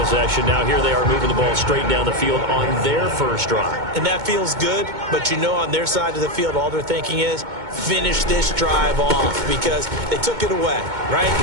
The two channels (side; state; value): left; late; 2.2 ms